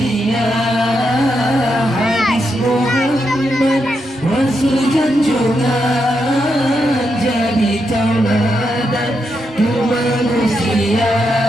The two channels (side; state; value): both; normal; correlation 0.83